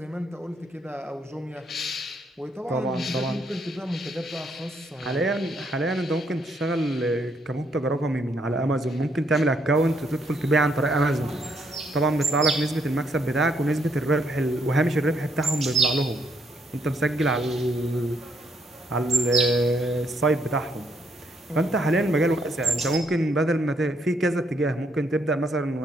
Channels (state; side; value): normal; both; correlation 0.72